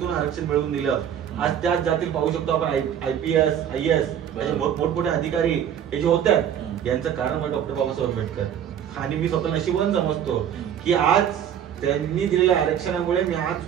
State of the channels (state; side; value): quieter; left; 9.4 dB